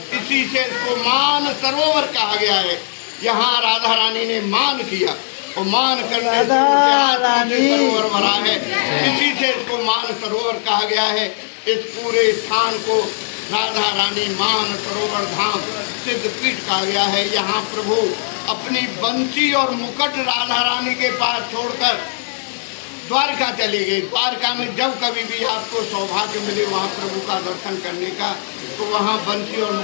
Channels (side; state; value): right; silent; digital silence